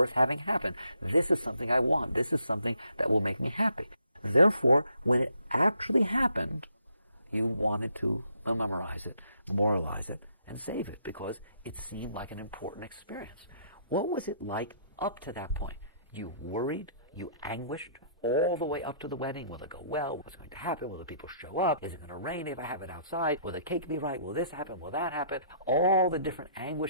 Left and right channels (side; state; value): both; inverted; correlation -0.67